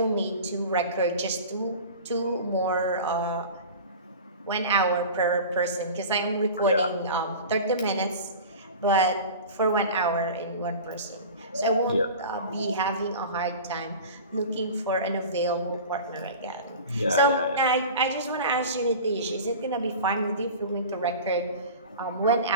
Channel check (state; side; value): inverted; both; correlation -0.36